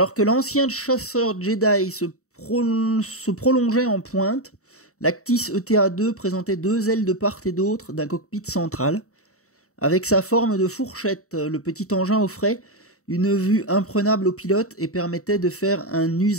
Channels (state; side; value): late; right; 0.64 ms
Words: que l'ancien chasseur Jedi se prolongeait en pointe, l'Actis ETA-2 présentait deux ailes de part et d'autre d'un cockpit central. Avec sa forme de fourchette, le petit engin offrait une vue imprenable au pilote et permettait de faire un